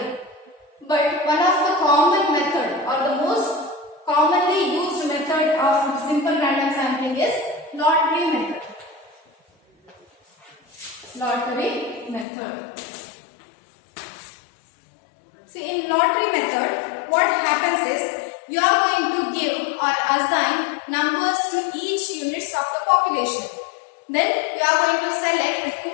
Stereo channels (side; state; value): right; drops out; at 12.2 s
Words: But one of the common method or the most commonly used method of simple random sampling is lottery method. Lottery method. See, in lottery method, what happens is you are going to give or assign numbers to each units of the population. Then you are going to select